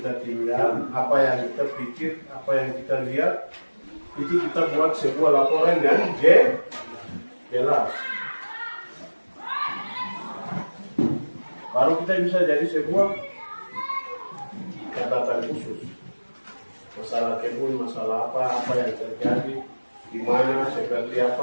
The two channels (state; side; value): inverted; both; correlation -1.00